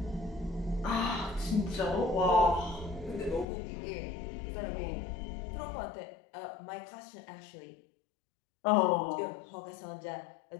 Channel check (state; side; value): drops out; right; at 3.5 s